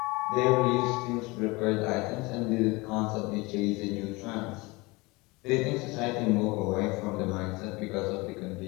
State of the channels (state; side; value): quieter; right; 24.3 dB